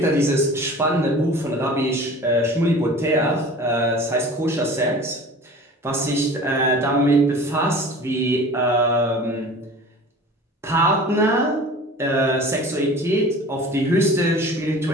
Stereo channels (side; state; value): both; normal; correlation 0.41